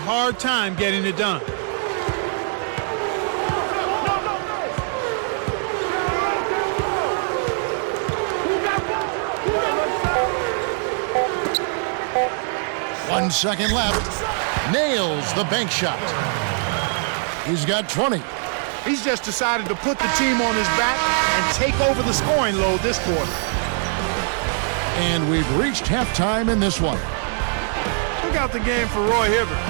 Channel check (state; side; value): silent; left; 56 dB below the other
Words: time getting it done. One second left. Nails the bank shot. He's got 20. He's just decided to put the team on his back and take over the scoring load this quarter. And we've reached halftime in this one. Look out the game for Roy Hibbert.